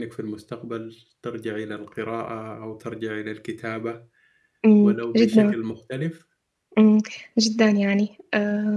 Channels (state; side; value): identical; both; correlation 1.00